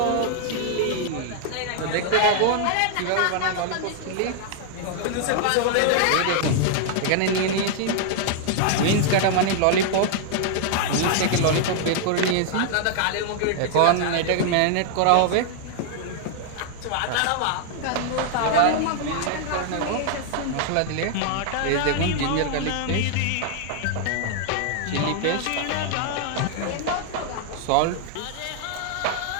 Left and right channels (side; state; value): both; different; correlation 0.00